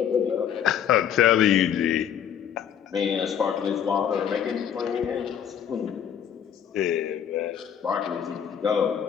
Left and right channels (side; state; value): right; quieter; 8.8 dB